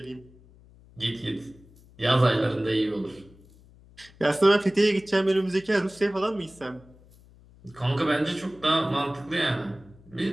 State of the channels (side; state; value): left; noise; hum, 25 dB below the sound